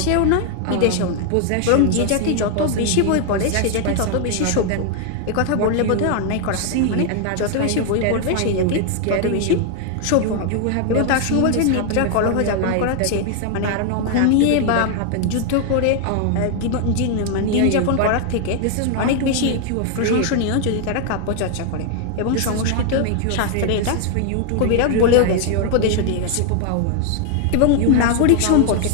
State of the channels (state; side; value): different; both; correlation 0.00